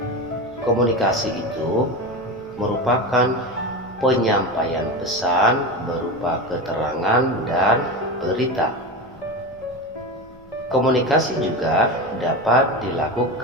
Komunikasi itu merupakan penyampaian pesan berupa keterangan dan berita. Komunikasi juga dapat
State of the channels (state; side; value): noise; left; hum, 29 dB below the sound